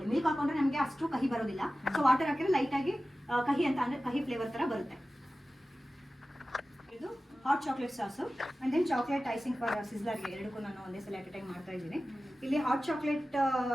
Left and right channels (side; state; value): both; normal; correlation 0.95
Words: ಮಿಲ್ಕ್ ಹಾಕೊಂಡ್ರೆ ನಮಗೆ ಅಷ್ಟು ಕಹಿ ಬರೋದಿಲ್ಲ. ಸೊ ವಾಟರ್ ಹಾಕಿದ್ರೆ ಲೈಟಾಗಿ ಕಹಿ ಅಂತ ಅಂದ್ರೆ ಕಹಿ ಫ್ಲೇವರ್ ಥರ ಬರುತ್ತೆ. ಇದು hot chocolate sauce and then chocolate icing for ಸಿಸ್ಲರ್ಗೆ, ಎರಡಕ್ಕೂ ನಾನು ಒಂದೇ ಸಲ ಅಟ್ ಎ ಟೈಮ್ ಮಾಡ್ತಾ ಇದ್ದೀನಿ. ಇಲ್ಲಿ ಹಾಟ್ ಚಾಕ್ಲೇಟ್